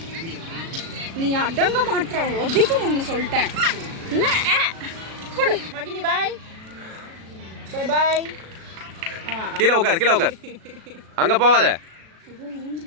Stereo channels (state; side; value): late; left; 36 ms